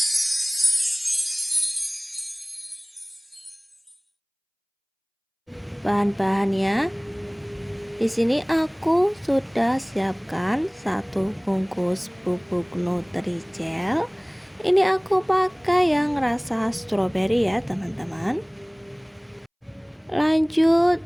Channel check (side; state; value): both; identical; correlation 1.00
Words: Bahan-bahannya di sini aku sudah siapkan satu bungkus bubuk Nutrijel. Ini aku pakai yang rasa stroberi ya teman-teman. Lanjut